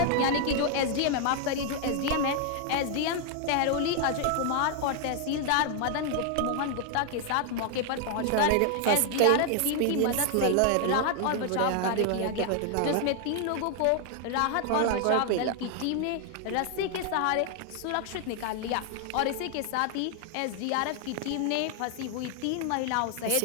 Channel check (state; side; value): different; both; correlation 0.00